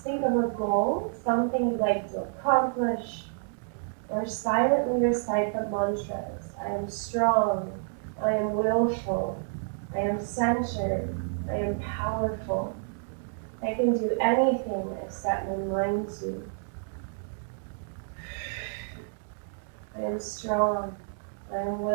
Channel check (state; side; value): silent; left; digital silence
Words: think of a goal, something you'd like to accomplish, or silently recite the mantras. I am strong, I am willful, I am centered, I am powerful. I can do anything I set my mind to. I am strong, I am